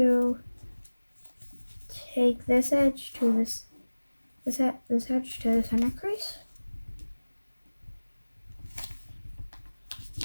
take this edge to this edge to the center crease.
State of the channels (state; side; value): inverted; both; correlation -1.00